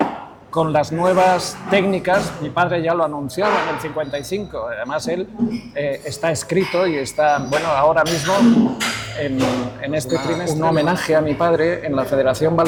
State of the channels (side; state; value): both; identical; correlation 1.00